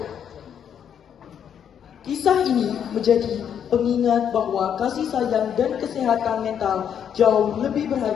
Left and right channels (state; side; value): quieter; right; 8.6 dB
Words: Kisah ini menjadi pengingat bahwa kasih sayang dan kesehatan mental jauh lebih